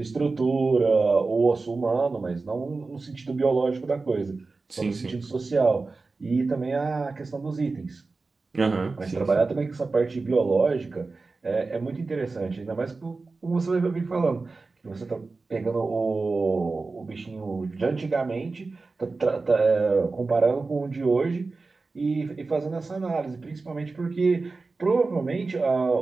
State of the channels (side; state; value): left; quieter; 3.9 dB